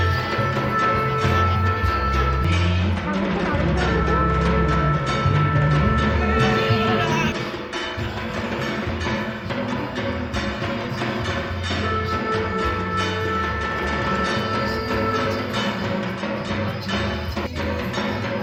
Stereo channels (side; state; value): both; identical; correlation 1.00